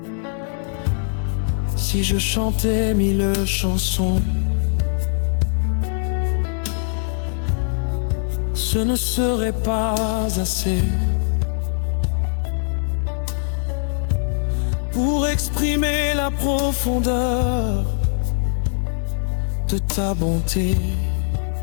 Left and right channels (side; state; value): right; silent; 64 dB below the other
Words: Si je chantais 1000 chansons, ce ne serait pas assez pour exprimer la profondeur de ta bonté.